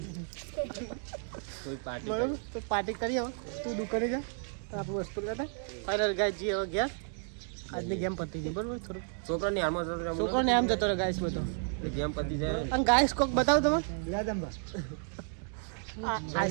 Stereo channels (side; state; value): left; silent; 56 dB below the other